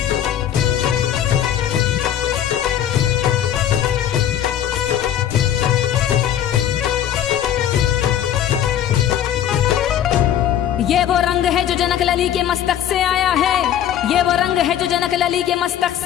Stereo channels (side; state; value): right; quieter; 10.5 dB